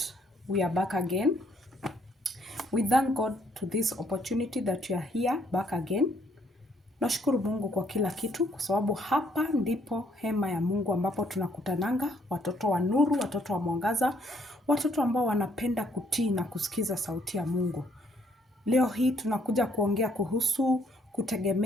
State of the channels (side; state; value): both; normal; correlation 0.68